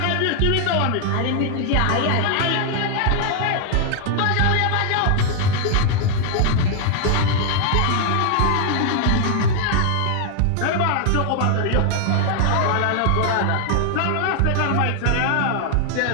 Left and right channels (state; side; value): different; both; correlation 0.00